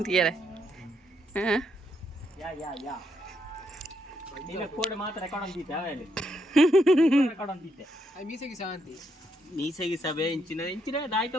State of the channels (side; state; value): both; normal; correlation 0.78